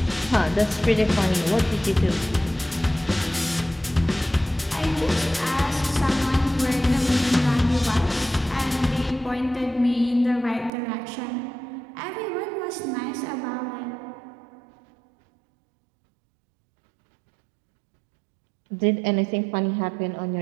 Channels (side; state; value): left; drops out; at 10.7 s